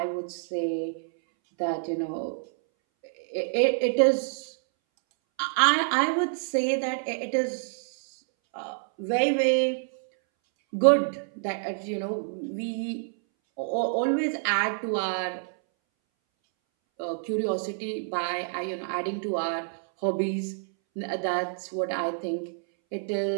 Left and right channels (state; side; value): silent; left; 60 dB below the other